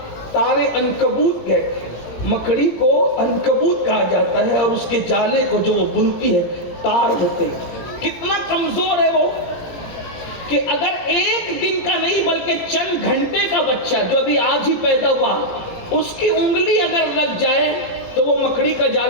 تار عنکبوت کہتے ہیں. مکڑی کو عنکبوت کہا جاتا ہے، اور اس کے جالے کو جو وہ بنتی ہے تار ہوتے ہیں. کتنا کمزور ہے وہ کہ اگر ایک دن کا نہیں بلکہ چند گھنٹے کا بچہ جو ابھی آج ہی پیدا ہوا، اس کی انگلی اگر لگ جائے تو وہ مکڑی کا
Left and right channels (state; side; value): late; right; 18 ms